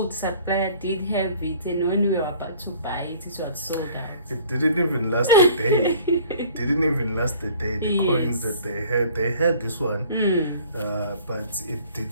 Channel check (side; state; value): both; inverted; correlation -0.52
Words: supplier did have it, and when we were about to buy it, it was sold out. It didn't even last a day. It didn't even last a day. The coins that they had this one, but it